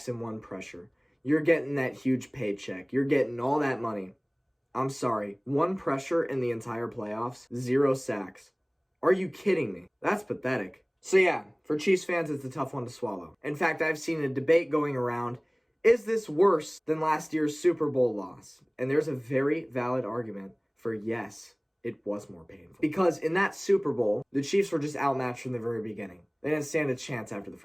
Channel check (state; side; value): identical; both; correlation 1.00